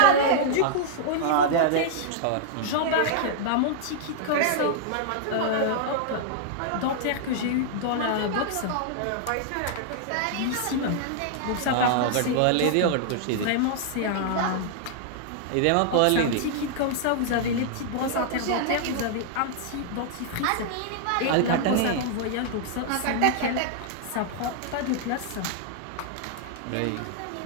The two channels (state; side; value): different; both; correlation -0.01